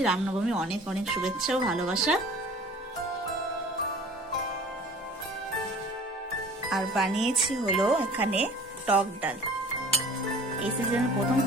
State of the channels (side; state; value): both; normal; correlation 0.46